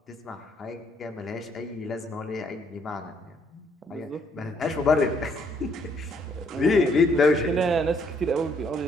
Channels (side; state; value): both; normal; correlation 0.68